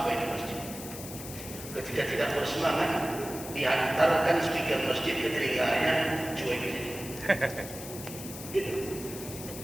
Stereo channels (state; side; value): noise; left; hiss, 11 dB below the sound